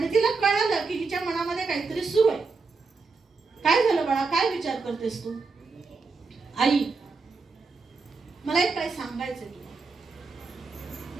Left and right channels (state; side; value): quieter; left; 4.4 dB